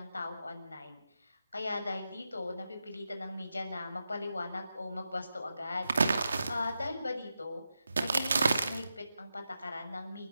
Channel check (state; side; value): inverted; both; correlation -0.89